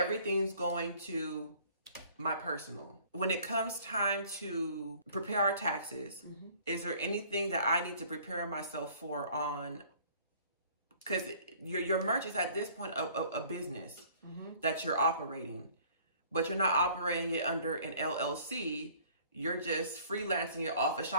going to my personal. When it comes time to prepare our taxes, is there anything that I need to prepare myself for on, because your merch is at this point a business that you're operating, but you're not operating it under an LLC. You're just freelancing it off of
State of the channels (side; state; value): both; inverted; correlation -0.55